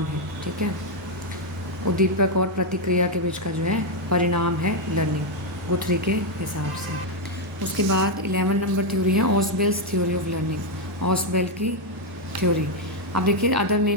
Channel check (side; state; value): both; normal; correlation 0.02